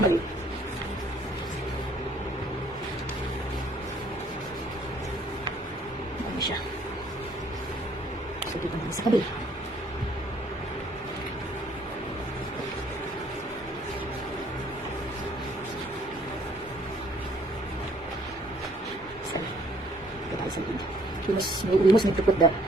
Ano siya? So, dito naman sa kabila. Sorry. Ito tayo sa lid. We must need to put the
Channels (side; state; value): both; normal; correlation 0.62